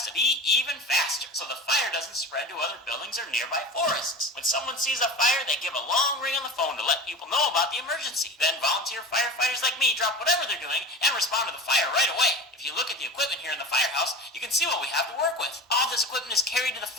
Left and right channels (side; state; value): both; normal; correlation 0.32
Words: to be even faster, so the fire doesn't spread to other buildings or nearby forests. When someone sees a fire, they give a long ring on the phone to let people know about the emergency. Then volunteer firefighters like me drop whatever they're doing and respond to the fire right away. If you look at the equipment here in the firehouse, you can see what we have to work with. All this equipment is carried to the